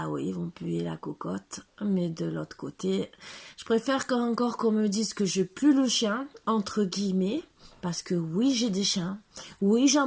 oui, ils vont puer la cocotte. Mais de l'autre côté, je préfère encore qu'on me dise que je pue le chien, entre guillemets, Parce que oui, j'ai des chiens. Oui,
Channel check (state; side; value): identical; both; correlation 1.00